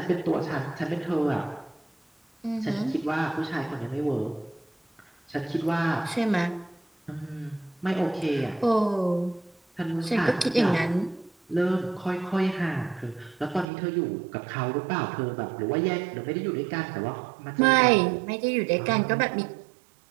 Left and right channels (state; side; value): drops out; left; at 13.7 s